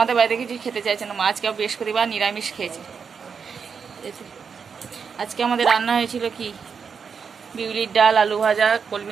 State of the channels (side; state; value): left; quieter; 6.1 dB